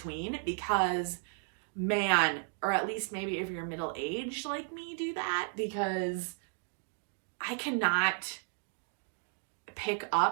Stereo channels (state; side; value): silent; left; 55 dB below the other